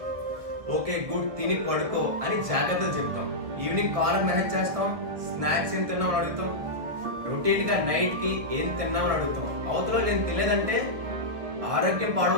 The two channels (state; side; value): late; left; 1.5 ms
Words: ఓకే గుడ్, తిని పడుకో అని జాగ్రత్తలు చెప్తాం. ఈవినింగ్ కాలర్ మెసేజ్ చేస్తాం, స్నాక్స్ ఏం తిన్నామని అడుగుతాం. రొటీన్ గా నైట్ కి ఏం తిన్నామని అడుగుతాం. అవతలో నేను తినలేదంటే ఆరోగ్యం